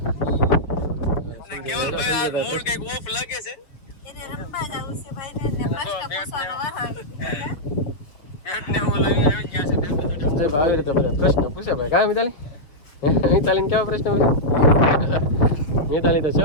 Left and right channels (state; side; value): late; right; 6.6 ms